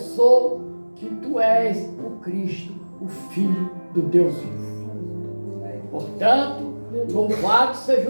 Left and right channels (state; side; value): inverted; both; correlation -1.00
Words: que tu és o Cristo, o Filho do Deus vivo. Portanto, Louvado seja